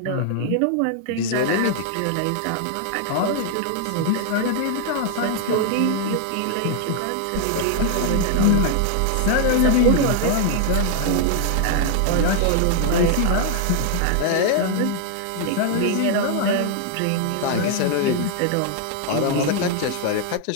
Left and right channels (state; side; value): different; both; correlation 0.00